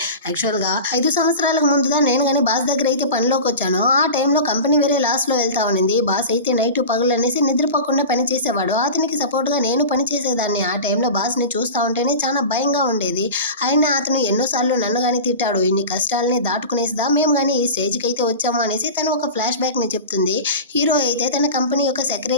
యాక్చువల్గా 5 సంవత్సరాలకు ముందుగా నేను కానీ బాస్ దగ్గర అయితే పనిలోకి వచ్చాను. ఆ టైంలో కంపెనీ వేరే లాస్లో వెళ్తా ఉండింది. బాస్ అయితే నైట్ పగులు అనేసి నిద్రపోకుండా పని చేసేవాడు. అతనికి సపోర్ట్గా నేను పని చేసేదాన్ని. ఆ టైంలో బాస్ని చూస్తూ ఉంటేనే చాలా భయంగా ఉండేది. అయినా అతను ఎన్నోసార్లు నన్ను కానీ తిట్టాడు. ఇన్ని కష్టాలని దాటుకునేసిదా మేము కానీ ఈ స్టేజ్కి అయితే వచ్చాము అనేసి తను ఒక ఫ్లాష్ బ్యాక్ని చెప్తుంది. హీరో అయితే తన కంపెనీ యొక్క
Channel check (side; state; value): both; inverted; correlation -0.31